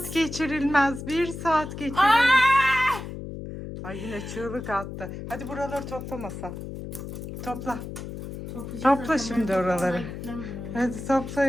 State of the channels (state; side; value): noise; left; hum, 8 dB below the sound